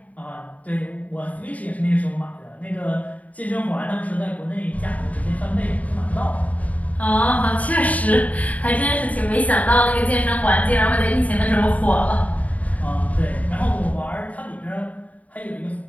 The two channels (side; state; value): right; late; 0.071 ms